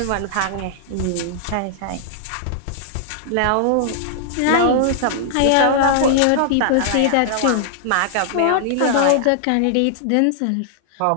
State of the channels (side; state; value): both; different; correlation -0.01